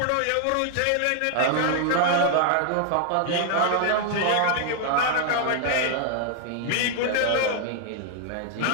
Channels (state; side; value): different; both; correlation 0.00